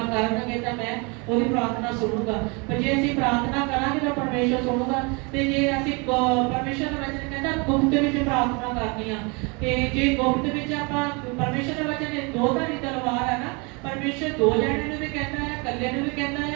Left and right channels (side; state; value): left; quieter; 30.3 dB